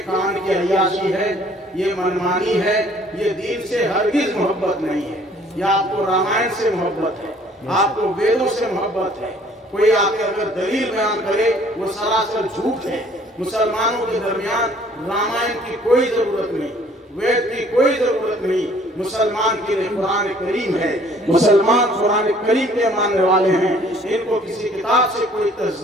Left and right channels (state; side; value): normal; both; correlation 0.57